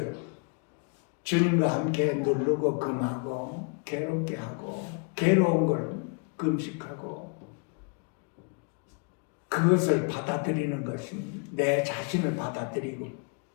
주님과 함께 누르고 금하고 괴롭게 하고 괴로운 걸 금식하고 그것을 받아들이는 것입니다. 내 자신을 받아들이고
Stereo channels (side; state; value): right; quieter; 37.9 dB